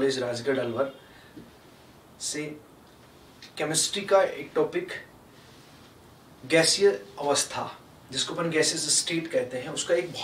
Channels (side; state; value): both; identical; correlation 1.00